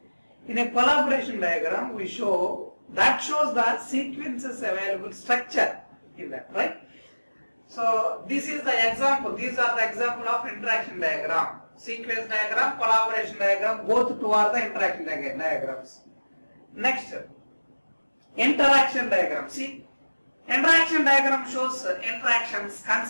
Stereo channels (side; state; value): both; inverted; correlation -1.00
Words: In a collaboration diagram we shows the sequences available structure in that, right? So this is the example. These are the example of interaction diagram. Sequence diagram, collaboration diagram, both two are the interaction diagrams. Next, interaction diagram. See, interaction diagram shows interactions